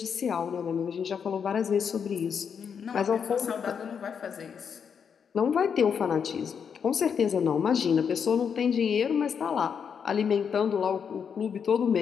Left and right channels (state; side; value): quieter; right; 7.0 dB